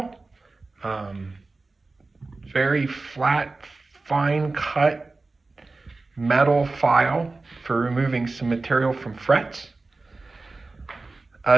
Very flat, fine cut metal file for removing some material from frets.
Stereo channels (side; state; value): left; quieter; 3.5 dB